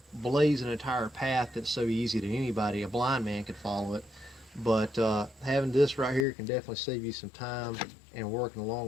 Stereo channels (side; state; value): right; drops out; at 6.2 s